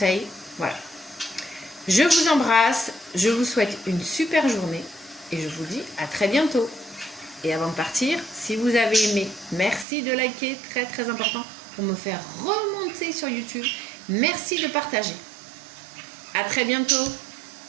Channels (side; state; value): left; drops out; at 9.9 s